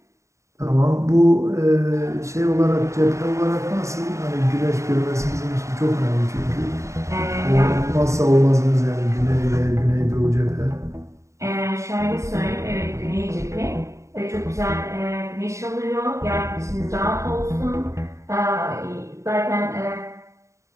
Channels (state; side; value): late; left; 0.14 ms